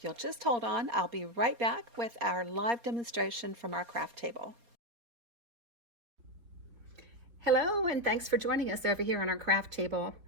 you'll just hold on, I'll be right back with our live demonstration from our craft table. Hello, and thanks for joining us over here on our craft table.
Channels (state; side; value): late; left; 4.2 ms